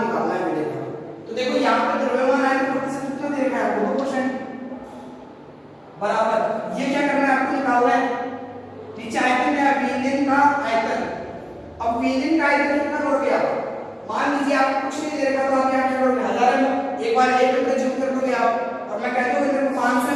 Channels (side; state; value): both; identical; correlation 1.00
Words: निकालना है विलयन का। तो देखो यहाँ पे द्रव्यमान आयतन प्रतिशत कितना दे रखा है आपको 2% बराबर, ये क्या करना है आपको निकालना है नीचे आयतन है विलयन का आयतन। अब विलयन का आयतन कितना करोगे आप, मान लीजिए आपको कुछ नहीं दे रखा तो आप क्या करोगे 1000 ml, एक बार 1 लीटर जूम कर दोगे आप, और मैं कहता हूँ इधर 500